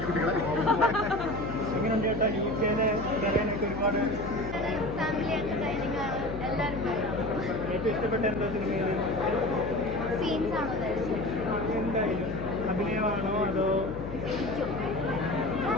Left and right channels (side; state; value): left; noise; hum, 9 dB below the sound